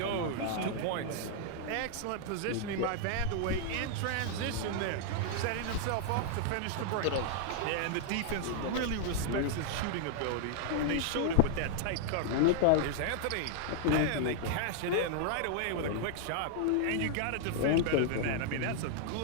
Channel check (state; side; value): different; both; correlation 0.00